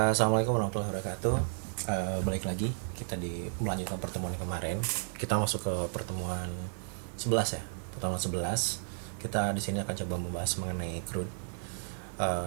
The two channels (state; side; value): silent; left; 56 dB below the other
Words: warahmatullahi wabarakatuh. Balik lagi kita di melanjutkan pertemuan yang kemarin. Kita masuk ke pertemuan 11 ya. Pertemuan 11. Kita di sini akan coba membahas mengenai CRUD.